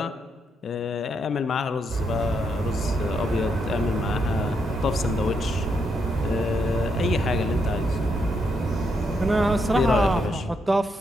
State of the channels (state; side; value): normal; both; correlation 0.79